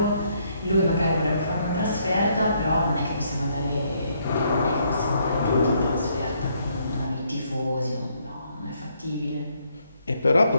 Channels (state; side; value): inverted; both; correlation -0.71